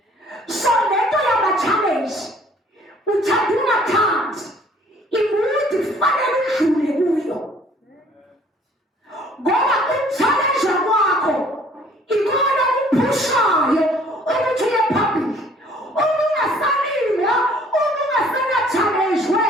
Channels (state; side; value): normal; both; correlation 0.56